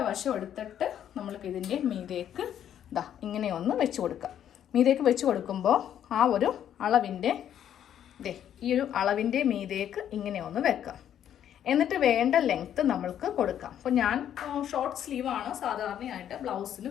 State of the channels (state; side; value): quieter; right; 10.1 dB